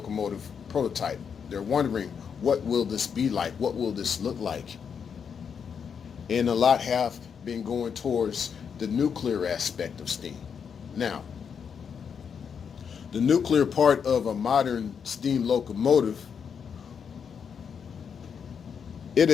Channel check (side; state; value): right; quieter; 6.9 dB